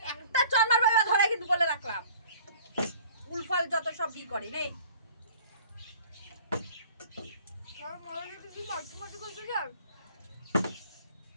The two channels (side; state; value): both; inverted; correlation -0.49